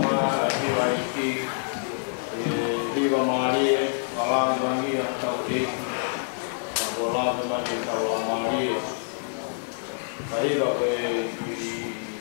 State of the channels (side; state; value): right; silent; digital silence